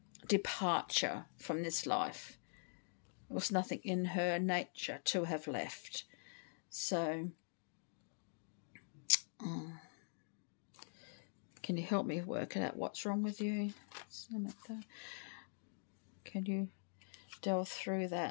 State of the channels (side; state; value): right; silent; digital silence